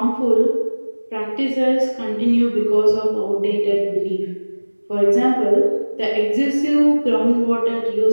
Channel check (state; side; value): inverted; both; correlation -1.00